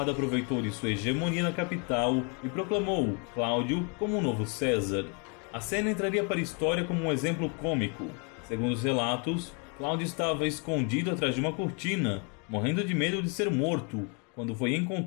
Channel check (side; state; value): right; quieter; 35.7 dB